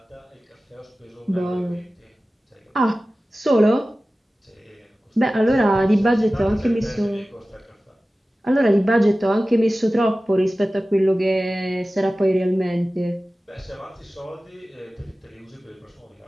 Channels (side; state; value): both; normal; correlation 0.96